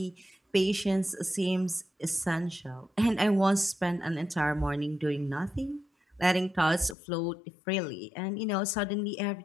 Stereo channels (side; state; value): right; drops out; at 7.0 s